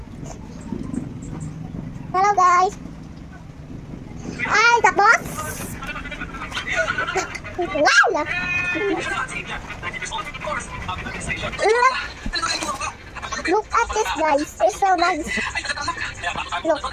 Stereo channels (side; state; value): both; identical; correlation 1.00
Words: Hello guys. Ay, tapos. Wow! Look at this guys. It's so nice. Look.